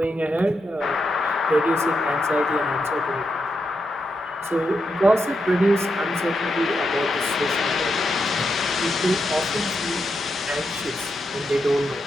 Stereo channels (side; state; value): both; normal; correlation 0.84